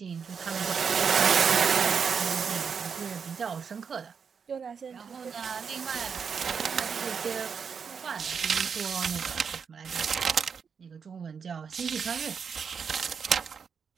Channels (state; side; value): quieter; left; 6.3 dB